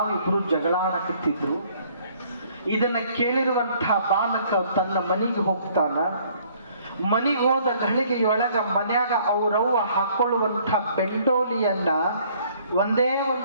ಜಗಳ ಆಡಕತ್ತಿದ್ರು. ಇದನ್ನ ಕೇಳಿರುವಂತಹ ಬಾಲಕ ತನ್ನ ಮನೆಗೆ ಹೋಗ್ತಾನ. ಮನೆಗೆ ಹೋದ ಘಳಿಗೆಯೊಳಗ ಮನ್ಯಾಗ ಅವ್ರವ್ವ ಹಾಕೊಳ್ಳುವಂಥ ಬೆಂಡೋಲಿಯನ್ನ ಒಂದೇ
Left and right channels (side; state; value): both; inverted; correlation -0.60